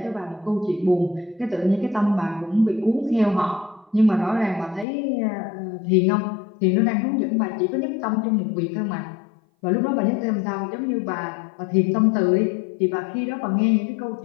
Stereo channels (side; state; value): right; drops out; at 4.9 s